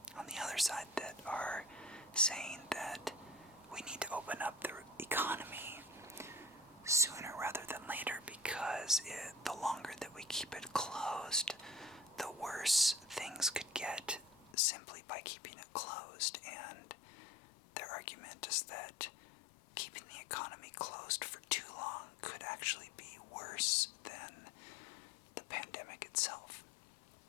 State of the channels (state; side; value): drops out; right; at 14.6 s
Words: on the other side that are saying that we need to open up the economy sooner rather than later, because the longer that we keep it closed, the worse things could get simply by keeping it closed. And their argument is that keeping the economy closed for too long could actually be worse than the pandemic itself.